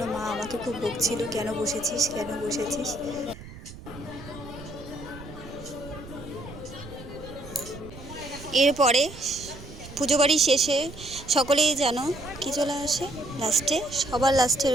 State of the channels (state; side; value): noise; right; rumble, 15 dB below the sound